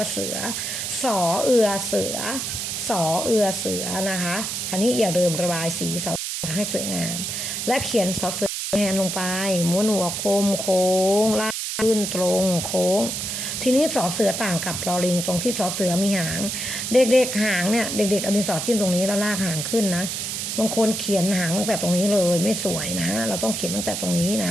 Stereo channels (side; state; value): right; noise; hiss, 3 dB below the sound